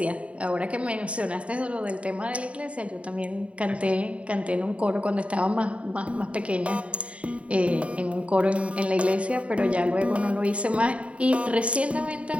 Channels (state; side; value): late; left; 0.063 ms